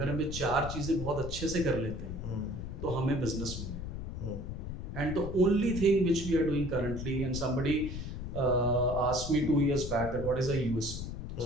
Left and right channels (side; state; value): left; noise; rumble, 6 dB below the sound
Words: हमें 4 चीजें बहुत अच्छे से कर लेते हैं तो हमें बिजनेस मिलेगा and the only thing which we are doing currently and somebody asked me 2 years back that what is a USP